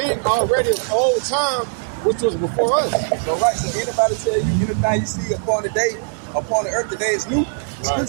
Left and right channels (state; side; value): silent; left; digital silence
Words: already of old time, which was before us. So right, so anybody tell you anything you see upon the earth today is new, Scripture